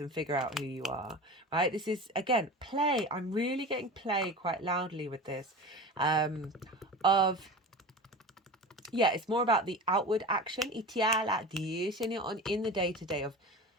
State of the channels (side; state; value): both; normal; correlation 0.32